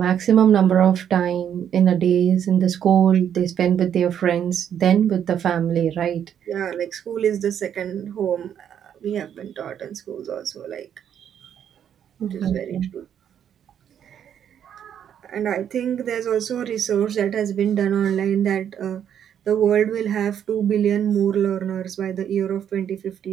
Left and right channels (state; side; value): quieter; left; 9.2 dB